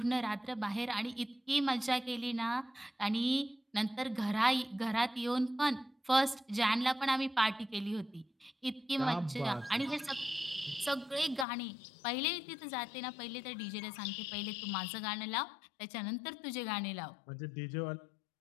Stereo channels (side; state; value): right; drops out; at 11.5 s